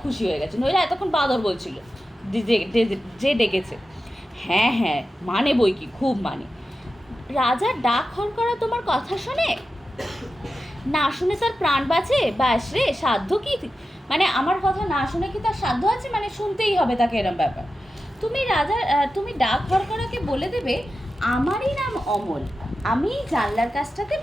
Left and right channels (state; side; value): normal; both; correlation 0.92